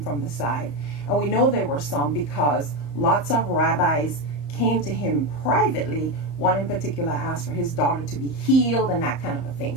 the side. And we know there were some because lots of rabbis came to him privately. One in particular asked for his daughter to be healed and that kind of a thing.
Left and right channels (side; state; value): right; late; 34 ms